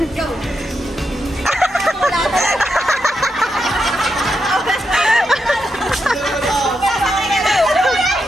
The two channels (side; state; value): both; normal; correlation 0.84